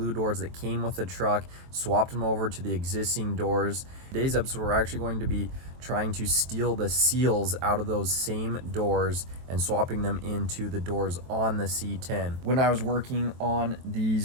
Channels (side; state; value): left; late; 23 ms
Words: doors that came with the truck, swapped them over to the existing doors. Today's episode, we're actually going to be trying to steal the seals out of those same doors and swapping them into the doors on the C10. When I was working on